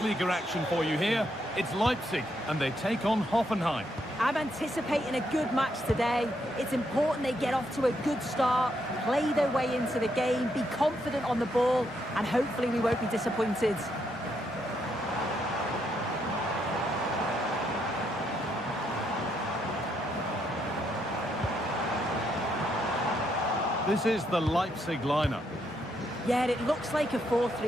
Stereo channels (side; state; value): both; normal; correlation 0.77